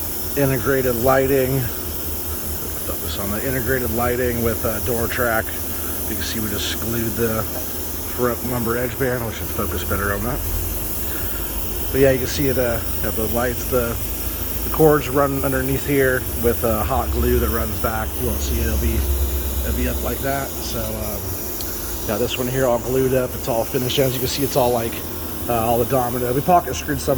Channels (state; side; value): identical; both; correlation 1.00